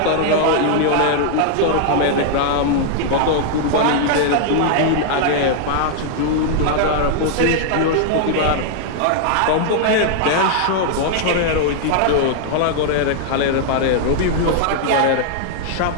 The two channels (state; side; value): different; both; correlation -0.01